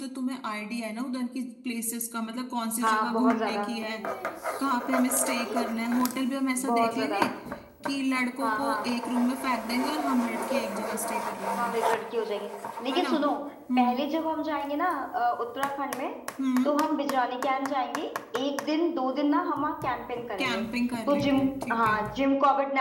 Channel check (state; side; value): identical; both; correlation 1.00